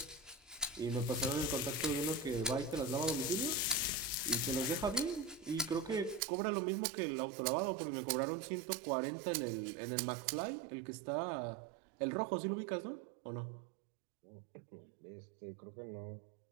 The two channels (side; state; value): left; drops out; at 6.2 s